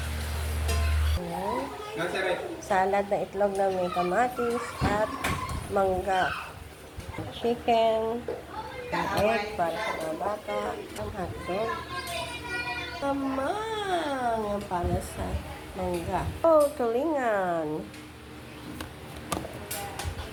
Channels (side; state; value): both; identical; correlation 1.00